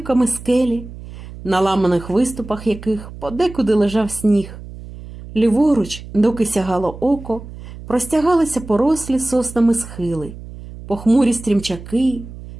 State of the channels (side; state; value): right; noise; hum, 14 dB below the sound